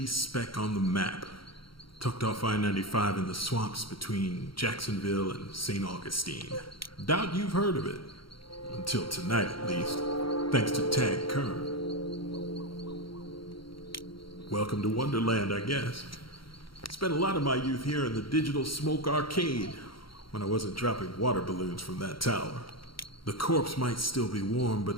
speck on the map. Tucked off I-95 in the swamps between Jacksonville and St. Augustine. Doubt you've heard of it. Until tonight, at least. Thanks to Tag Kern. Welcome to Wonderland, I guess. Spent a lot of my youth here in the Digital Smoke Arcade when I wasn't dropping water balloons from that tower. The corpse might still be warm,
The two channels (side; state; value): right; late; 0.74 ms